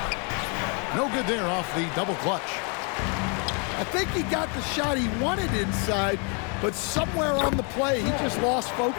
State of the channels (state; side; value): quieter; right; 36.1 dB